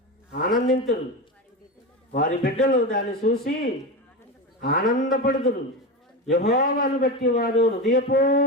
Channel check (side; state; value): both; normal; correlation 0.20